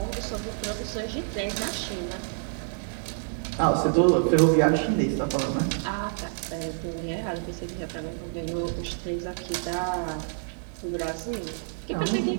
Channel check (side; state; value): left; silent; 59 dB below the other